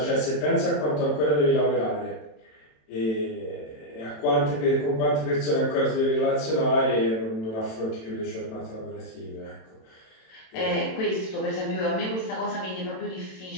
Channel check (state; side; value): late; right; 27 ms